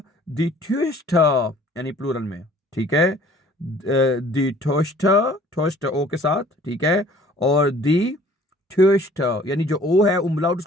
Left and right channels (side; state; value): both; normal; correlation 0.53